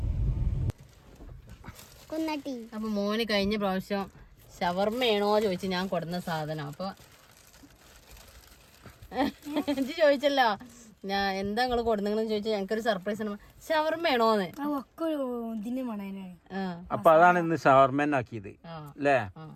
അപ്പൊ മോന് കഴിഞ്ഞ പ്രാവശ്യം ഷവർമ്മയാണോ ചോദിച്ചു ഞാൻ കൊടുന്ന സാധനം. അപ്പൊ എനിക്ക് ചോദിച്ചല്ലോ ഞാൻ എന്താ നിങ്ങള് കൊടുന്നെന്ന് ചോദിച്ചാൽ ഞങ്ങൾക്കൊരു സർപ്രൈസ് ആണ്. ഷവർമ്മയാണോന്ന്. അപ്പൊ അതാണ് ഇന്ന് ഷവർമ്മനാക്കിയത് അല്ലേ?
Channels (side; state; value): both; identical; correlation 1.00